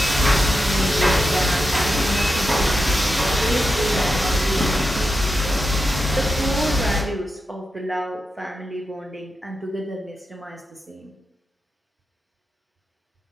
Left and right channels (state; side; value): normal; both; correlation 0.88